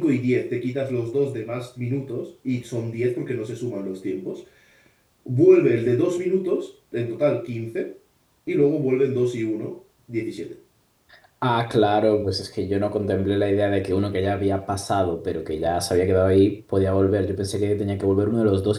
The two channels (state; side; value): identical; both; correlation 1.00